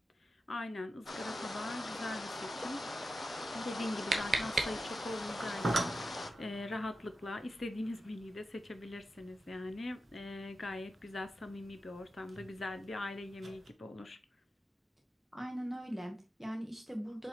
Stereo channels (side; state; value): both; normal; correlation 0.91